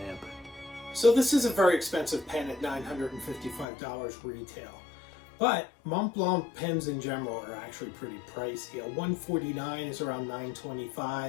So this is a very expensive pen at $955 retail. But Montblanc pens in general are actually pretty pricey. A 149 is around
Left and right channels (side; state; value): right; drops out; at 3.7 s